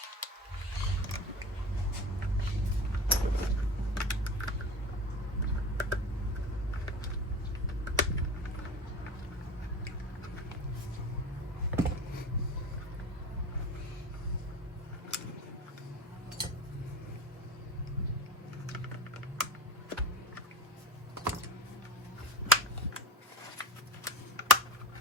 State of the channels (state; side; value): normal; both; correlation 0.33